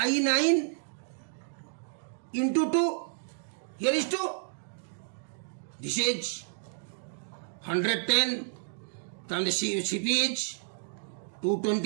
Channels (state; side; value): silent; left; digital silence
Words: 9 into 2. Here is 2. This is 110. Then the CP is